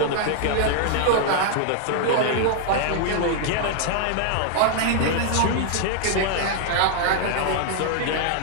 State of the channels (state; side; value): different; both; correlation 0.00